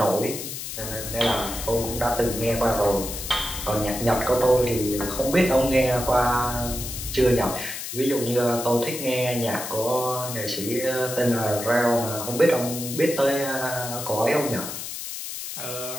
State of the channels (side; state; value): left; noise; hiss, 7 dB below the sound